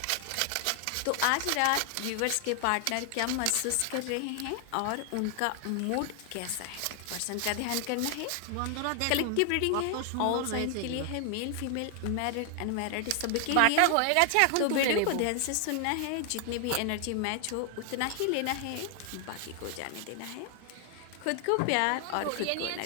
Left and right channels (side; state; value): both; different; correlation 0.00